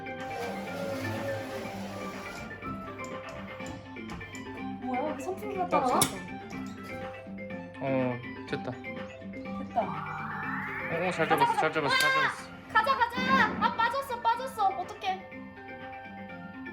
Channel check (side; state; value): both; identical; correlation 1.00